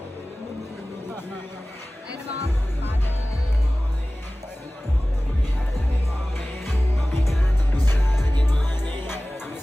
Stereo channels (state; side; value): normal; both; correlation 0.97